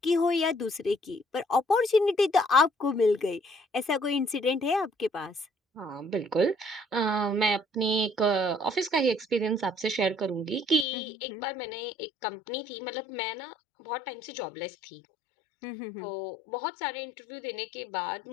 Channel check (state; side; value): drops out; right; at 10.9 s